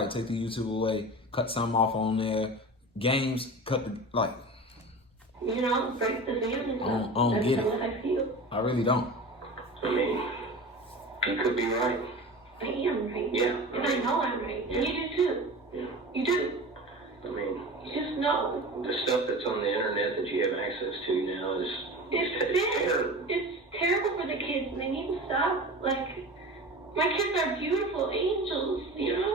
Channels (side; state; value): both; normal; correlation 0.33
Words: right, take the YouTube away. Cut something off on there. Games, cut the, like. Break the family. I don't get it. That's how I feel. I really don't. I mean, you could be right. I am right. Yeah. And I know I'm right. And you do too. Yeah. You do. I mean, You just know. the stuff that's on the internet that you have access to now is It's terrible for the kids, and they need to stop. Like, my kids are beautiful angels, and